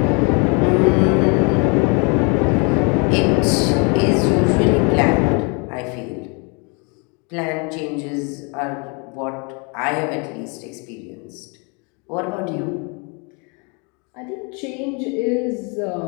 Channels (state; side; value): quieter; right; 33.2 dB